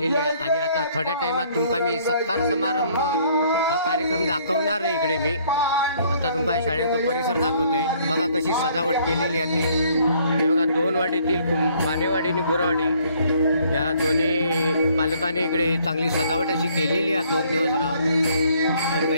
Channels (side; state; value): both; inverted; correlation -0.63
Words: आहे आणि आता थोड्या टाइमात तुमका मी सत्कार समारंभ हा कार्यक्रम दाखवणार आहे। इकडे मी आता तुमका शाळेचा परिसर दाखवतोय। बघा कशी सजावट केलेली आहे ती। हे बघा दोन वाडीतील मानेवाडी आणि गुरवाडी या दोन्ही पालकांनी इकडे चांगली सजावट अशी केलेली आहे। 2 दिवस राहून तर